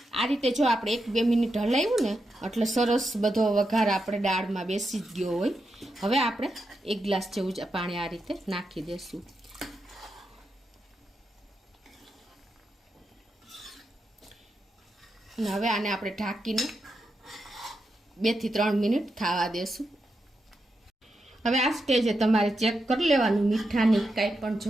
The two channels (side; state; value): both; normal; correlation 0.86